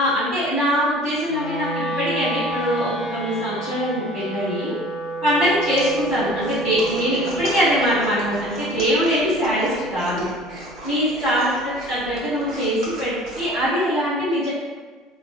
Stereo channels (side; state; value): both; normal; correlation 0.46